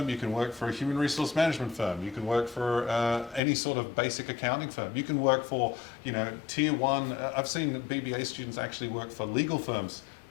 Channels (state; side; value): drops out; right; at 3.4 s